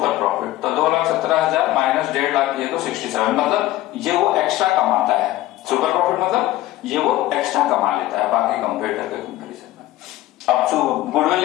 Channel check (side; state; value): right; quieter; 15.7 dB